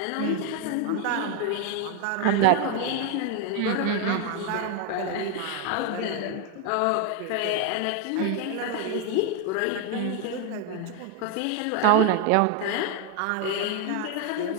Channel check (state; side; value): different; both; correlation 0.01